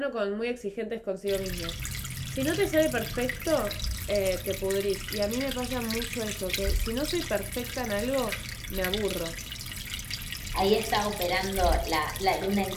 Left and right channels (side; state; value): both; identical; correlation 1.00